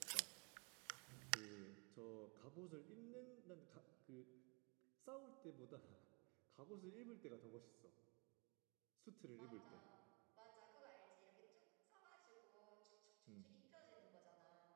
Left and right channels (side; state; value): left; quieter; 33.9 dB